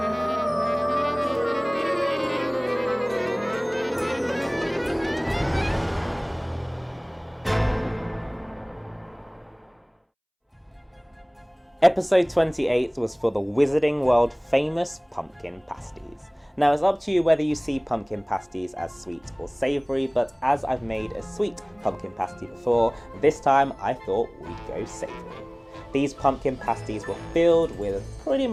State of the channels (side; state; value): both; identical; correlation 1.00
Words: Episode 28 was for the Wizarding World famous pumpkin pasties. Now it's up to you whether you see pumpkin pasties as sweet or savoury, but as I've made a sweet pumpkin pasty before, this time I thought we'd go savoury. These pumpkin pasties were filled with pretty